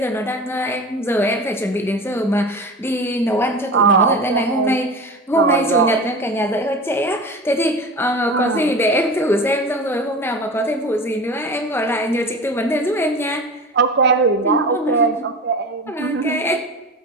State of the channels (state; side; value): normal; both; correlation 0.33